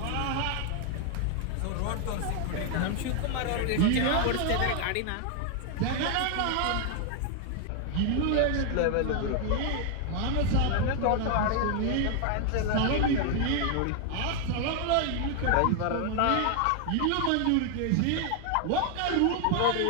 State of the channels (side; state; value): both; different; correlation 0.00